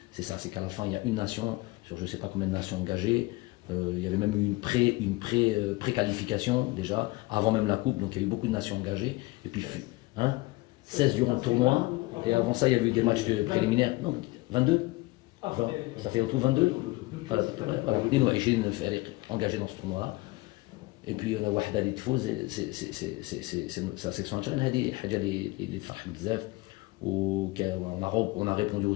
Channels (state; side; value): quieter; right; 22.0 dB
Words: c'est ça, c'est qu'à la fin, il y a une nation sur je ne sais pas combien de nations engagées. Il y avait même eu une pré-qualification déjà, avant même la coupe, donc il y a eu beaucoup de nations engagées. Et puis, 16 durant le tournoi, et avant ça, il y avait eu des matchs préliminaires. Non, 22 20, ça fait en tout 22. Voilà, engagés dans ce tournoi-là. Et puis, on a Wahda li tfouz, c'est la section algérienne, هذه حاجة اللي تفرح بزاف. On a répondu